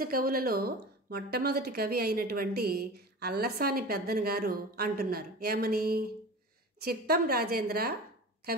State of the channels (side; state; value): both; normal; correlation 0.34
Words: కవులలో మొట్టమొదటి కవి అయినటువంటి అల్లసాని పెద్దన గారు అంటున్నారు. ఏమని? చిత్తం రాజేంద్ర,